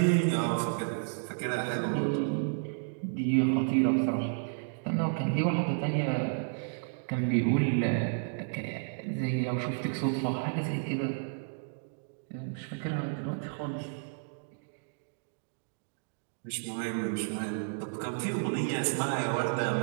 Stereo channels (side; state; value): left; silent; digital silence